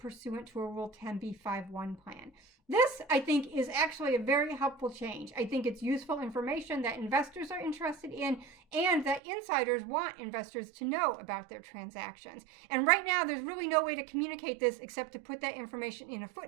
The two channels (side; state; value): left; drops out; at 9.2 s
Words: to a Rule 10b5-1 plan. This, I think, is actually a very helpful change. I think it's useful information that investors are interested in and that insiders want investors to know about their transactions. And right now, there's really no way to communicate this except to put that information in a